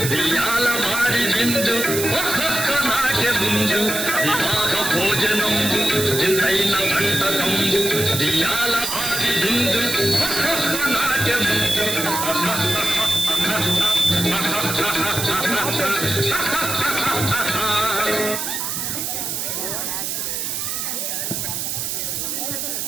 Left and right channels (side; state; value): right; noise; hiss, 2 dB below the sound